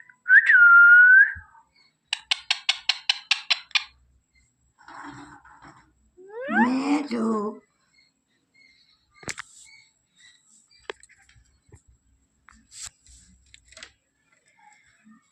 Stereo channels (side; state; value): both; identical; correlation 1.00